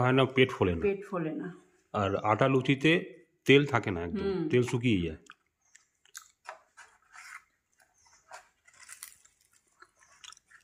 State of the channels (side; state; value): both; identical; correlation 1.00